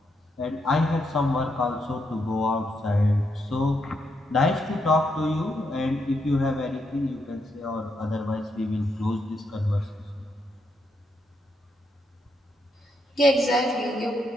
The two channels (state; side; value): normal; both; correlation 0.79